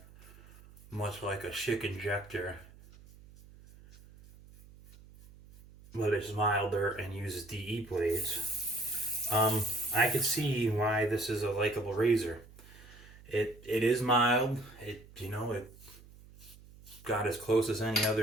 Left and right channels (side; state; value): right; noise; hum, 22 dB below the sound